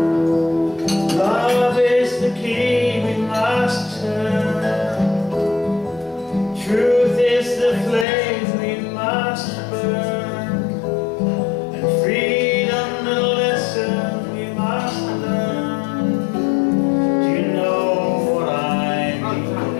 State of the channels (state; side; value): drops out; right; at 8.1 s